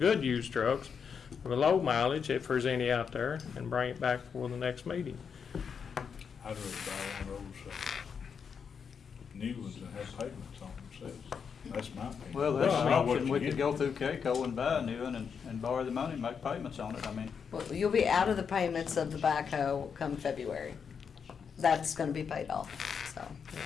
used trucks with low mileage, if there's any out there, and bring it back for the next meeting. I'd rather buy one of those new ones that have payments on themselves. That's my opinion. Well, that's Well, an I know what option, you we get. could go through Keiko and buy a new one and borrow the money and make payments on it, I mean. Well, you'll be out of the payments of the backhoe come February. That's gonna be paid off, so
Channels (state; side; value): quieter; right; 6.6 dB